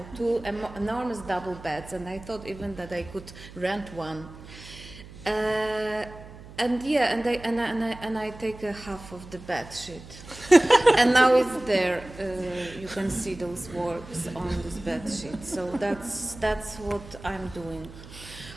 2 enormous double beds, and I thought even that I could rent one. And I take a half of the bed sheet, and now it's there. You can see those works on this bed sheet. So that's what I'm doing.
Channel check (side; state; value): right; noise; hum, 17 dB below the sound